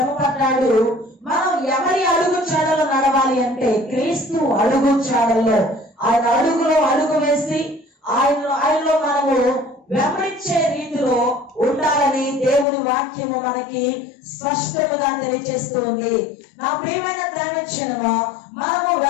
పడ్డాడు. మనం ఎవరి అడుగు చాడలో నడవాలి అంటే క్రీస్తు అడుగు చాడల్లో, ఆయన అడుగులో అడుగు వేసి ఆయనలో మనము వెంబడించే రీతిలో ఉండాలని దేవుని వాక్యము మనకి స్పష్టంగా తెలియజేస్తుంది. నా ప్రియమైన దైవజనమా, మనము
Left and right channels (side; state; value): right; drops out; at 12.7 s